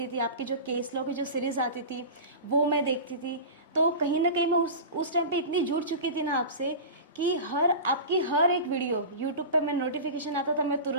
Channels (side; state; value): both; inverted; correlation -0.30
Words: थी, आपकी जो केस लॉ की जो सीरीज आती थी वो मैं देखती थी। तो कहीं ना कहीं मैं उस टाइम पे इतनी जुड़ चुकी थी ना आपसे कि आपकी हर एक वीडियो यूट्यूब पे मैं नोटिफिकेशन आता था मैं